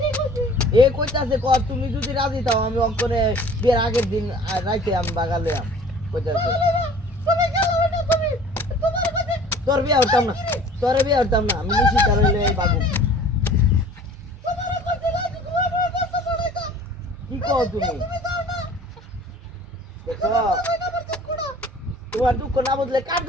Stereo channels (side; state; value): both; normal; correlation 0.48